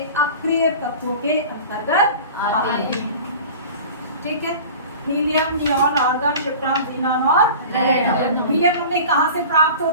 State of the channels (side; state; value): both; inverted; correlation -0.38